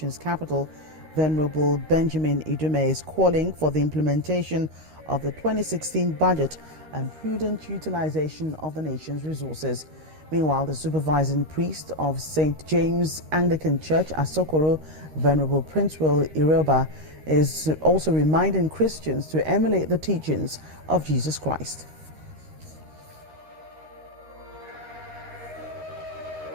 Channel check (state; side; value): late; left; 13 ms